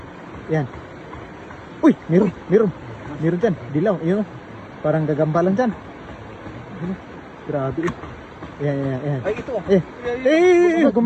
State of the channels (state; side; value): identical; both; correlation 1.00